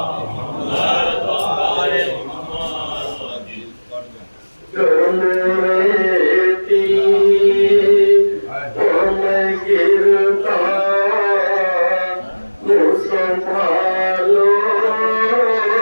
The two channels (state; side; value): inverted; both; correlation -1.00